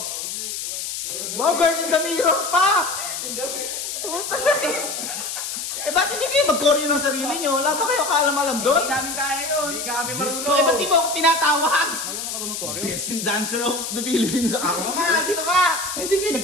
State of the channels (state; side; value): noise; left; hiss, 5 dB below the sound